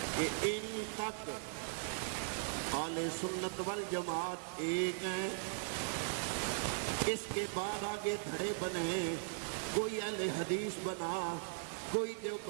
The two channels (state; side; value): silent; left; digital silence